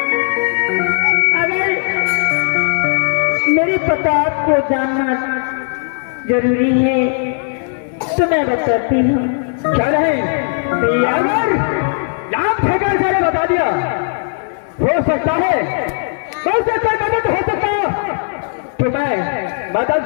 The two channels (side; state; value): right; silent; 66 dB below the other